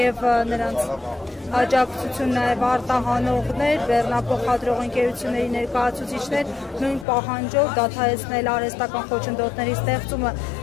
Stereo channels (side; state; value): right; drops out; at 7.1 s